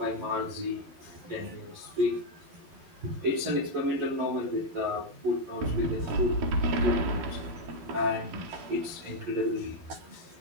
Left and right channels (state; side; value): late; left; 12 ms